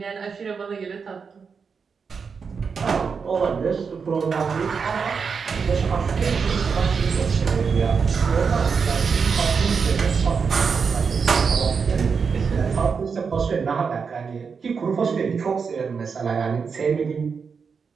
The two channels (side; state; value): left; quieter; 5.7 dB